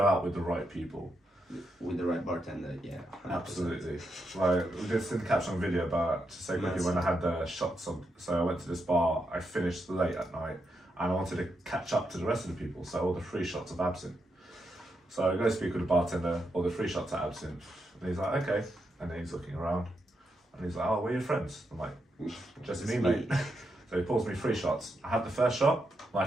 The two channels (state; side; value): normal; both; correlation 0.83